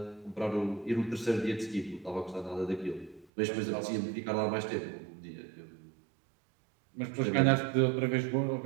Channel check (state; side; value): drops out; left; at 3.2 s